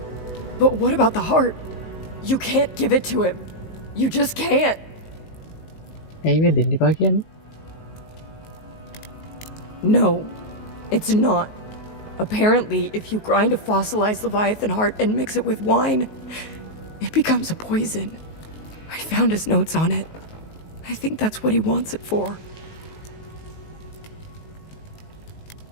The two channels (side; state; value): right; late; 19 ms